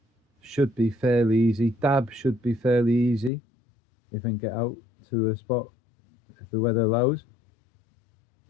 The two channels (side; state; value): right; drops out; at 3.3 s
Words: should be fairly easy. Dab should be fairly easy if I can get out to a spot if the weather allows.